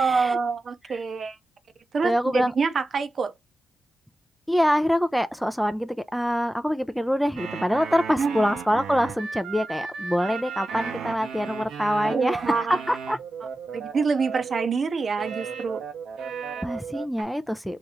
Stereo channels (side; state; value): both; normal; correlation 0.93